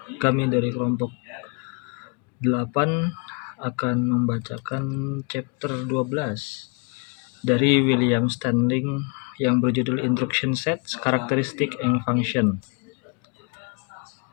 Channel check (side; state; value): right; quieter; 34.6 dB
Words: Kami dari kelompok 8 akan membacakan chapter 12 dari William Standing yang berjudul Instruction Sets, Characteristic and Function.